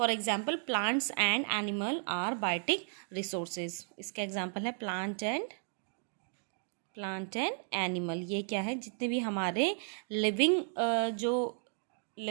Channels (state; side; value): silent; left; 55 dB below the other